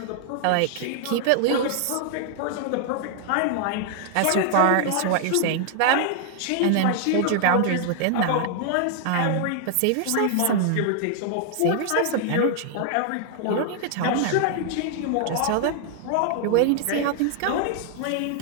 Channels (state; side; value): different; both; correlation 0.00